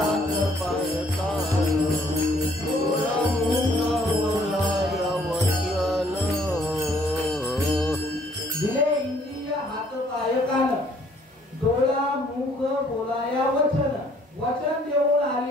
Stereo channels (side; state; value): both; normal; correlation 0.62